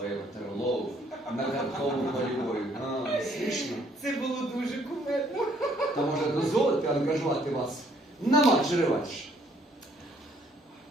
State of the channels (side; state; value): both; normal; correlation 0.64